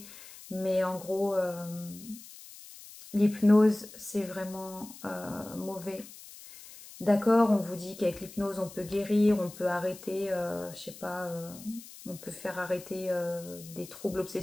mais en gros, l'hypnose, c'est vraiment mauvais. D'accord, on vous dit qu'avec l'hypnose, on peut guérir, on peut arrêter, je sais pas, on peut faire arrêter des troubles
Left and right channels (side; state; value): left; noise; hiss, 17 dB below the sound